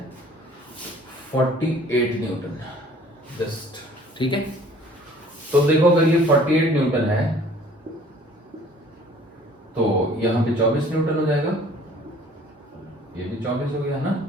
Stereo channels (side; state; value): both; normal; correlation 0.53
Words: 48 न्यूटन जस्ट. ठीक है, तो देखो अगर ये 48 न्यूटन है तो यहां पे 24 न्यूटन हो जाएगा. ये भी 24 हो गया ना,